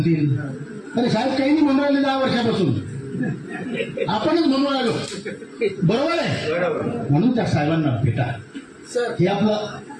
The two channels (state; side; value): identical; both; correlation 1.00